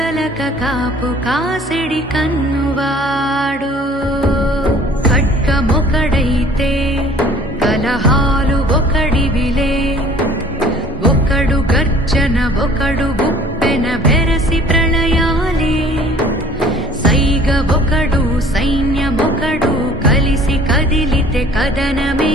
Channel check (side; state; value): both; normal; correlation 0.52